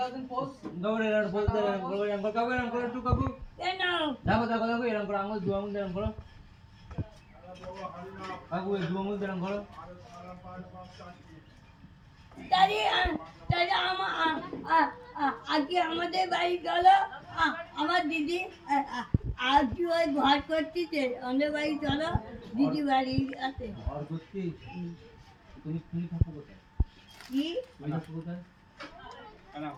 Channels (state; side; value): identical; both; correlation 1.00